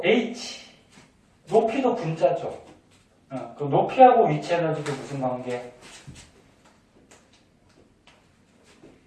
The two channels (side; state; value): both; identical; correlation 1.00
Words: H, 높이도 분자죠. 그 높이하고 위치 에너지도 무슨 관계?